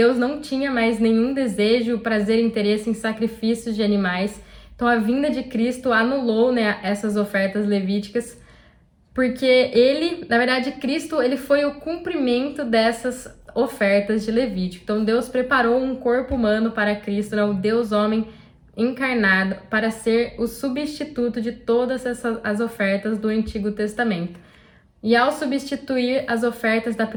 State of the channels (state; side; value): identical; both; correlation 1.00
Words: não tinha mais nenhum desejo, prazer, interesse em sacrifícios de animais. Então a vinda de Cristo anulou, né, essas ofertas levíticas, porque ele, na verdade, Cristo ele foi o cumprimento dessas ofertas de Levítico. Então Deus preparou um corpo humano para Cristo, né, o Deus homem encarnado, para ser o substituto de todas as ofertas do Antigo Testamento. E ao substituir as ofertas da